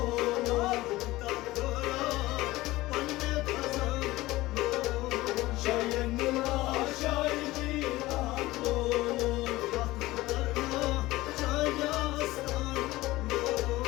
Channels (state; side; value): quieter; right; 18.4 dB